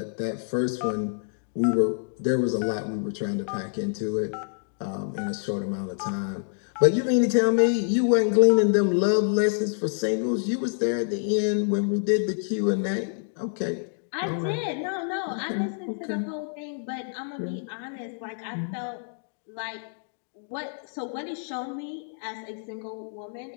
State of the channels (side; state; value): right; silent; digital silence